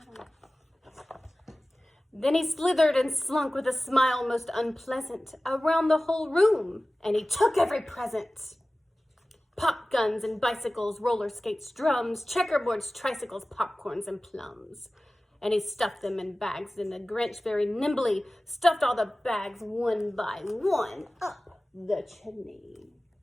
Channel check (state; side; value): normal; both; correlation 0.97